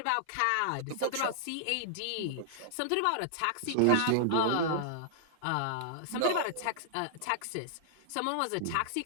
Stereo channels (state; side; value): different; both; correlation -0.01